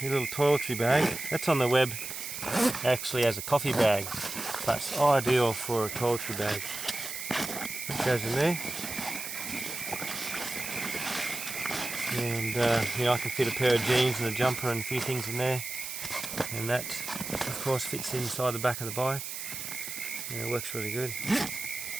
your little toiletry bag. That's on the web actually as a coffee bag, but it's ideal for a toiletry bag. That goes in there. And you know, I can fit a pair of jeans and a jumper and a few things in there. And that, of course, fits inside the back of the bike. And it works really good.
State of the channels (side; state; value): right; noise; hiss, 7 dB below the sound